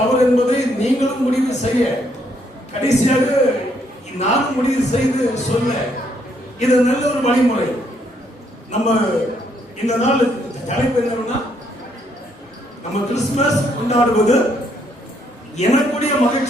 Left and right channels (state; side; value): normal; both; correlation 0.71